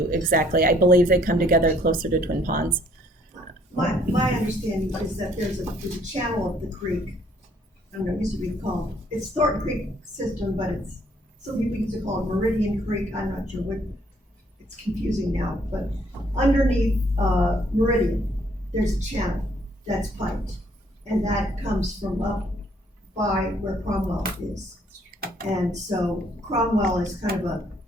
exactly. I believe they come together closer to Twin Ponds. My understanding is that there's a channel of the creek. I don't know, it used to be called, it's Thornton Creek system, but it's, some people used to call it Meridian Creek. I'm not sure what, it's confusing now, but underneath Meridian, there's a channel that's piped, and that comes from up by where Cromwell is. And so Cromwell is kind of a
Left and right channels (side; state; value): both; normal; correlation 0.64